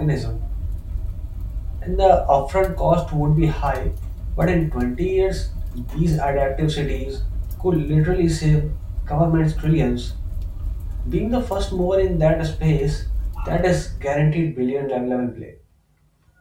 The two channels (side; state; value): both; identical; correlation 1.00